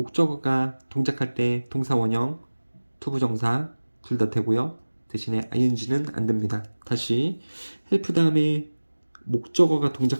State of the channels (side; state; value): both; inverted; correlation -1.00